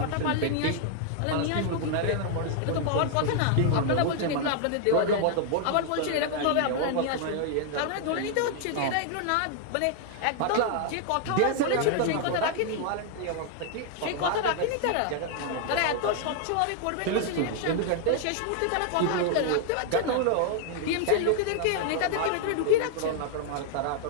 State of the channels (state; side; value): different; both; correlation 0.00